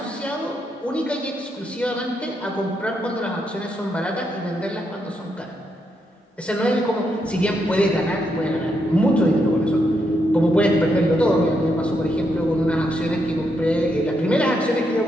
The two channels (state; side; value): normal; both; correlation 0.80